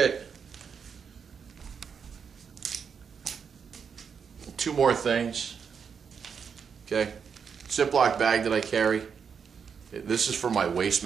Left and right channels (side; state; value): left; quieter; 6.5 dB